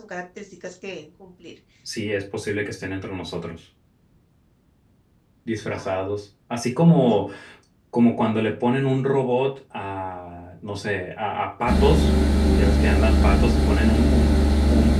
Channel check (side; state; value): both; identical; correlation 1.00